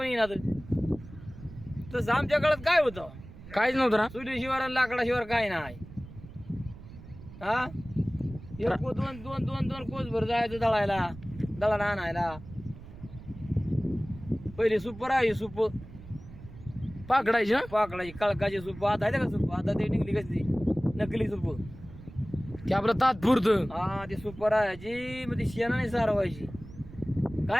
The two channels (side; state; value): right; noise; rumble, 16 dB below the sound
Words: येणार. तसं आमच्या काळात काय होतं? काहीच नव्हतं ना. चुलीशिवाय आणि लाकडाशिवाय काय नाही. हा, दोन कोस भर जायचं दळायला, दळण आणायला. पहिले सूप राहायची, सूप पाकडायची ना, पाकडायची कळकाची सूप. आता आहे का सूप? आता ते निघली कसली नकली सूप, की आपलं तात्पुरतं. हा, ती सूप राहायची, मग ती शेणाने सारवायची.